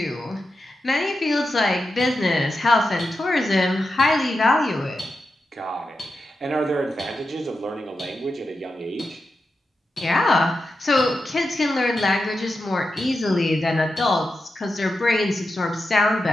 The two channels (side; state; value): both; normal; correlation 0.89